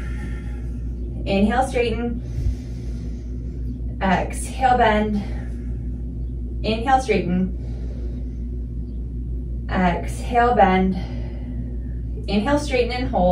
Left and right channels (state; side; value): identical; both; correlation 1.00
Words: Inhale, straighten, exhale, bend, inhale, straighten, exhale, bend, inhale, straighten and